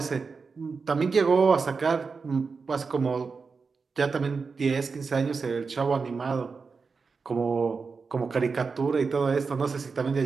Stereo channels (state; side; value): quieter; left; 4.9 dB